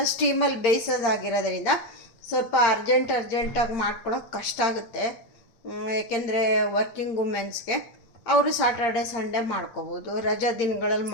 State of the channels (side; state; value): right; late; 8.7 ms